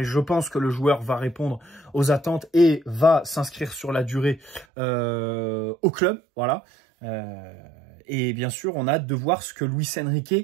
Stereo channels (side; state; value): left; drops out; at 4.7 s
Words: je pense que le joueur va répondre aux attentes et va s'inscrire sur la durée au club, voilà. Et bien sûr, on a hâte de voir ce que Luis